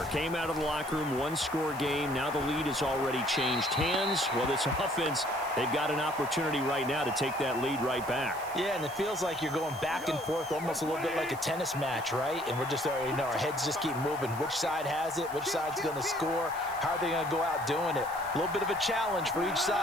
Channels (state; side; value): noise; right; hiss, 17 dB below the sound